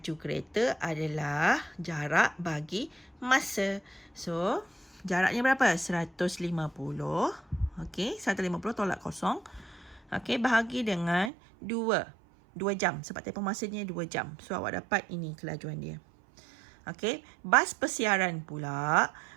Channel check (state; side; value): drops out; left; at 11.3 s